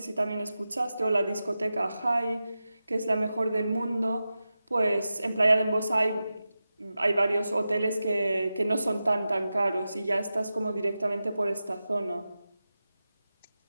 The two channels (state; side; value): inverted; both; correlation -0.93